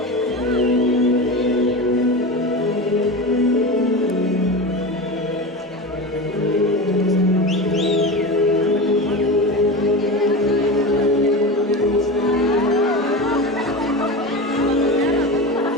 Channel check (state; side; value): normal; both; correlation 0.26